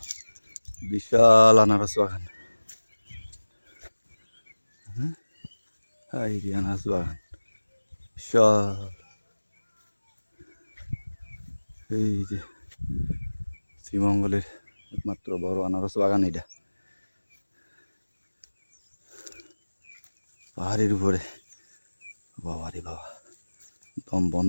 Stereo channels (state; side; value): inverted; both; correlation -1.00